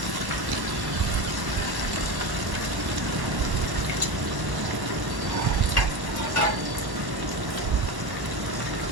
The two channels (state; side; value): late; left; 1.1 ms